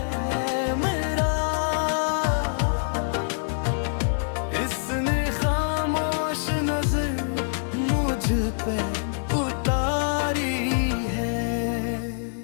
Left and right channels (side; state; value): right; silent; 57 dB below the other